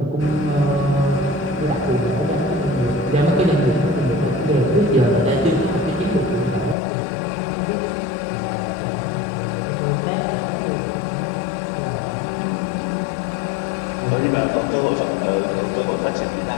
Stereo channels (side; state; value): right; drops out; at 6.8 s